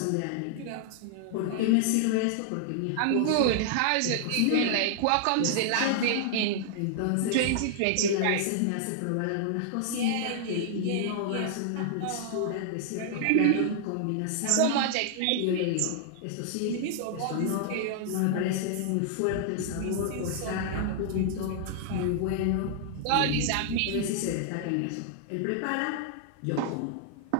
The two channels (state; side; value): different; both; correlation -0.01